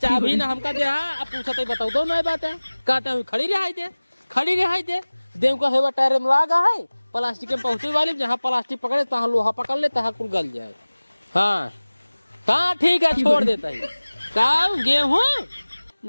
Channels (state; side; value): inverted; both; correlation -1.00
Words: अभी ना हमका दे अब पूछते बताओ दो नई बात है कहते हैं खड़ी रिहाई दे देव का हेवा टायर में लगा है प्लास्टिक में पहुंचे वाली जहाँ प्लास्टिक पकड़े तहाँ लोहा पकड़ ले तहाँ कुल गल जाए। हाँ हाँ ठीक है छोड़ देता है का गेहूँ